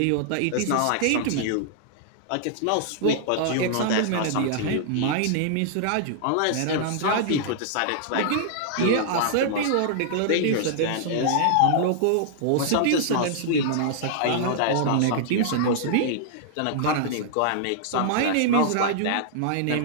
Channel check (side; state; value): both; different; correlation -0.01